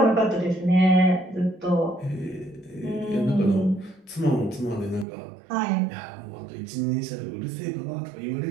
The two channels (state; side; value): drops out; left; at 5.1 s